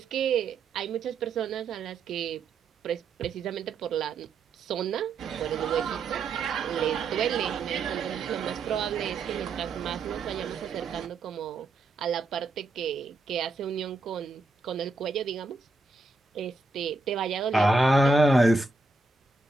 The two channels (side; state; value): left; quieter; 3.4 dB